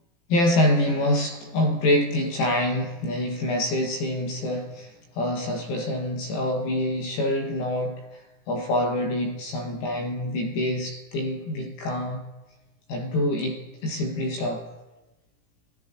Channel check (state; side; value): late; right; 18 ms